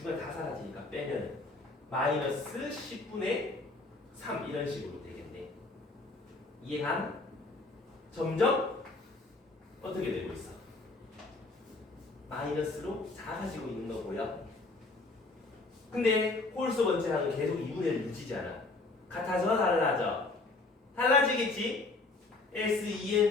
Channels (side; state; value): right; quieter; 3.4 dB